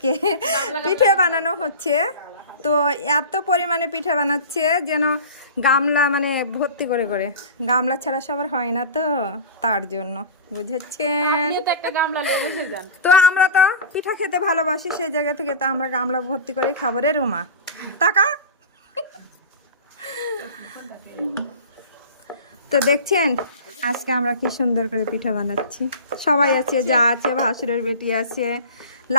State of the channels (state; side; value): inverted; both; correlation -0.34